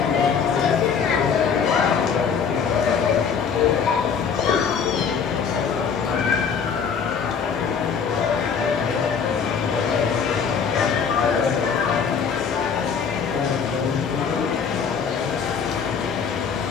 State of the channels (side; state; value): right; quieter; 6.5 dB